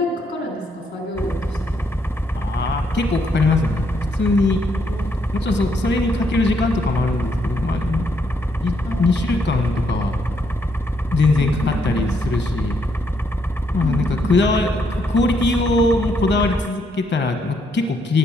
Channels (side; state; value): both; normal; correlation 0.74